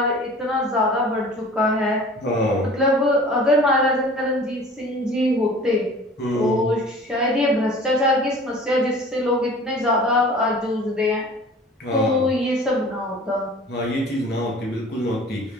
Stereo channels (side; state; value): both; normal; correlation 0.45